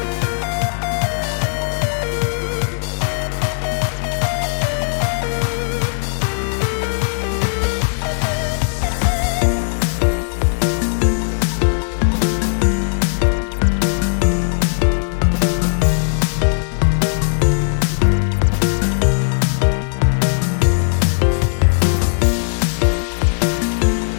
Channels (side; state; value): right; silent; digital silence